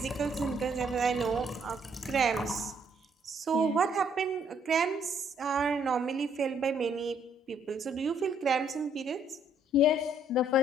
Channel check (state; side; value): normal; both; correlation 0.67